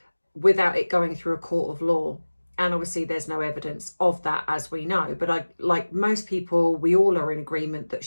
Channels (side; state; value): both; inverted; correlation -1.00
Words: without it going through a court of law. And obviously there's no evidence of that, as we know. But like most people, we all are in agreement that